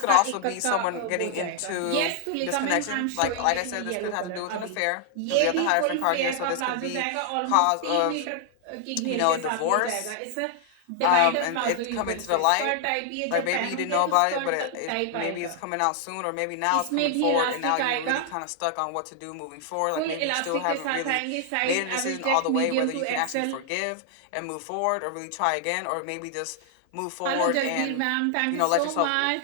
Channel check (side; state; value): both; different; correlation 0.00